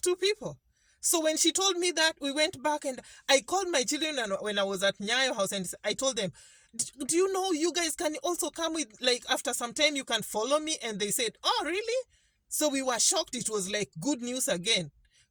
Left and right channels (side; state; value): both; identical; correlation 1.00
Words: to people. So when she told me that, we went back and I called my children, and when I was at Nyayo house, and I told them, do you know you guys can also come with, after some time you can follow me? And they said, oh, really? So we were shocked. It was like good news again,